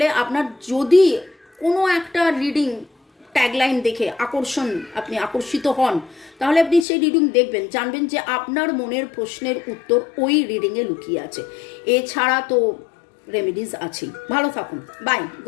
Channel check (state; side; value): drops out; right; at 6.9 s